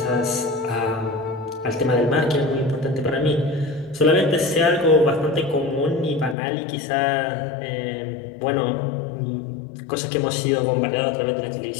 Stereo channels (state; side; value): drops out; right; at 6.4 s